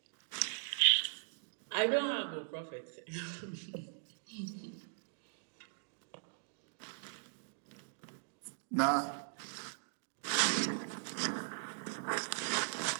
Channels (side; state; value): left; silent; digital silence